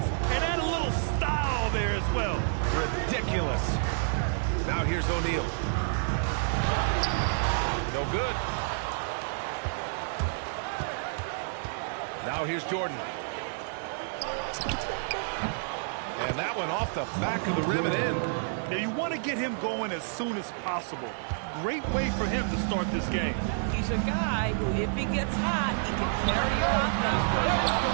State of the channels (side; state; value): left; silent; digital silence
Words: and add a little style there as well. Ridiculous. Now here's O'Neal. No good. Now here's Jordan. And that one off the back of the rim and in. Now you want to get him going as soon as possible. Great way for him to start this game. He's a guy who, if he gets hot, he can carry your offense for long